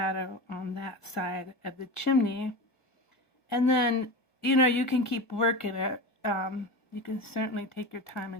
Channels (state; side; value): late; right; 1.6 ms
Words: on that side of the chimney. And then, you know, you can keep working it. You can certainly take your time